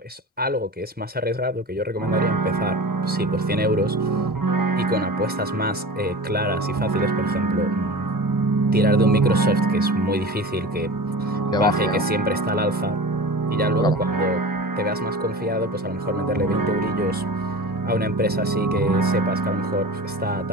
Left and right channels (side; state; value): both; normal; correlation 0.33